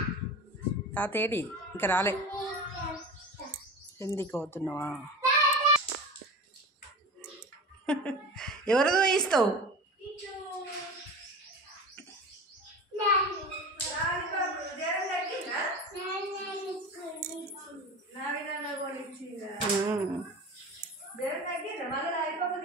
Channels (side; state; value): both; normal; correlation 0.32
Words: తాత ఏడి? ఇంకా రాలే. ఎందుకు అవుతున్నావా? ఎవరిదో ఇస్తావు?